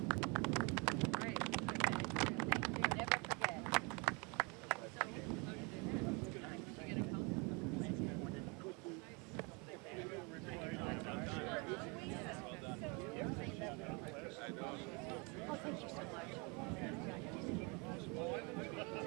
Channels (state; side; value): quieter; left; 30.8 dB